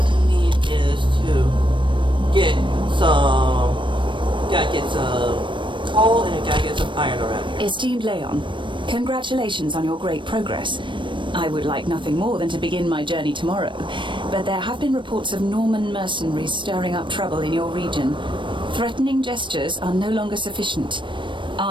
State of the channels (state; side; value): late; left; 0.24 ms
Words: to need is to get some... Gotta get some coal and gotta get some iron around here. Esteemed Leon, congratulations on your great progress. I would like nothing more than to begin my journey tomorrow, but there have been reports of Norman mercenaries stirring up trouble in your region. Threatening gestures are no longer sufficient.